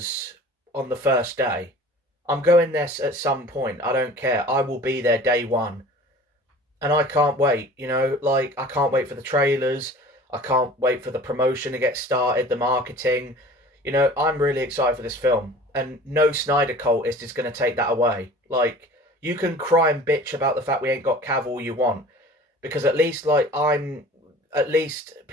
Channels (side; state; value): both; normal; correlation 0.44